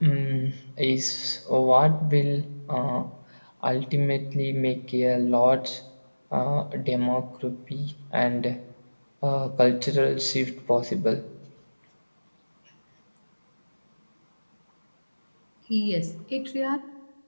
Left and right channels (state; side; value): inverted; both; correlation -1.00